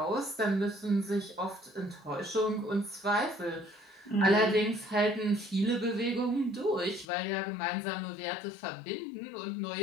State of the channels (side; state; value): right; drops out; at 7.1 s